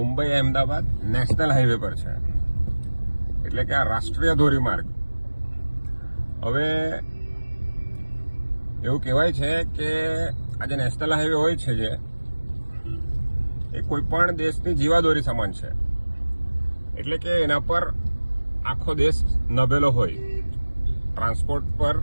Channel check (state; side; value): inverted; both; correlation -1.00